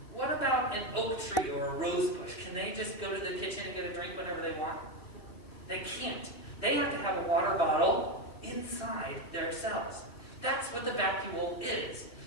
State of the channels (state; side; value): late; right; 2.9 ms